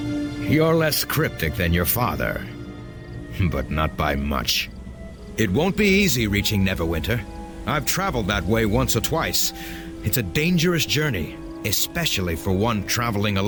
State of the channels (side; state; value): both; identical; correlation 1.00